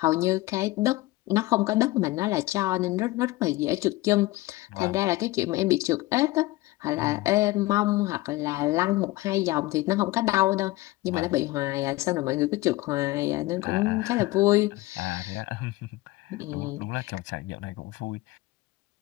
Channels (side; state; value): right; quieter; 19.5 dB